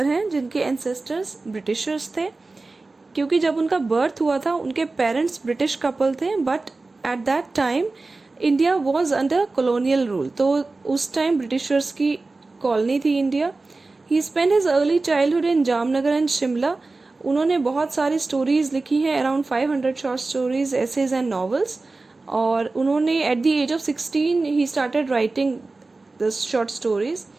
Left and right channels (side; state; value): left; quieter; 3.5 dB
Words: हैं जिनके एंसेस्टर्स ब्रिटिशर्स थे। क्योंकि जब उनका बर्थ हुआ था उनके पेरेंट्स ब्रिटिश कपल थे, but at that time India was under colonial rule, तो उस टाइम ब्रिटिशर्स की कॉलोनी थी India. He spend his early childhood in Jamnagar and Shimla. उन्होंने बहुत सारी स्टोरीज लिखी हैं, around 500 short stories, essays and novels. और उन्होंने at the age of 16 he started writing the short stories